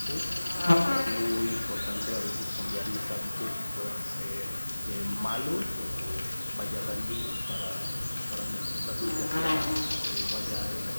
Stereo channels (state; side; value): inverted; both; correlation -1.00